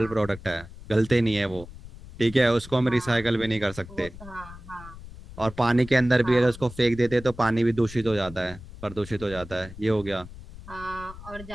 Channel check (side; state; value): left; noise; rumble, 16 dB below the sound